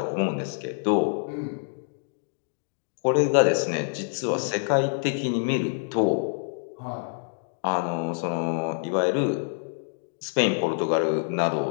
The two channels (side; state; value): right; silent; digital silence